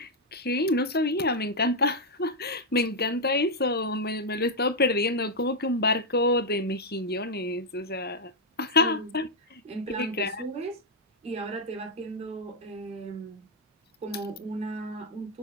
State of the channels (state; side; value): normal; both; correlation -0.01